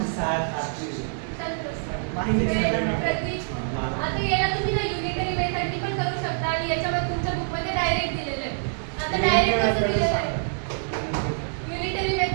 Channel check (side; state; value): left; silent; digital silence